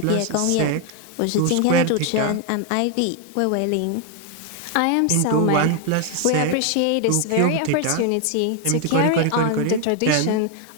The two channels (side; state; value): both; different; correlation 0.00